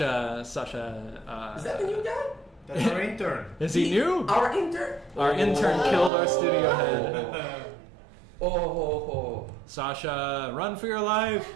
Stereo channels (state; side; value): drops out; left; at 6.1 s